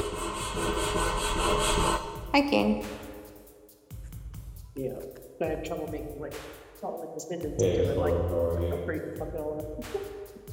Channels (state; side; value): identical; both; correlation 1.00